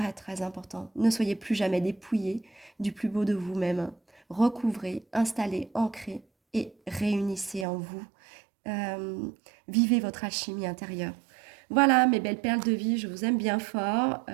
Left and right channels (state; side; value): drops out; left; at 7.7 s